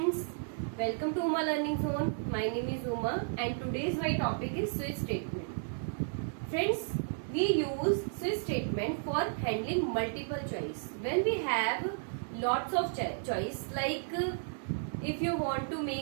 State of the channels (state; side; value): silent; left; digital silence